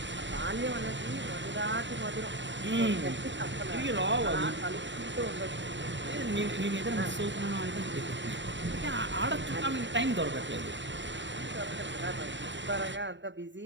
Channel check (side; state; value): left; late; 0.53 ms